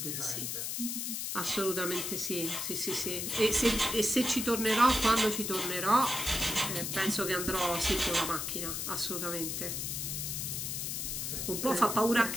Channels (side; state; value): left; noise; hiss, 3 dB below the sound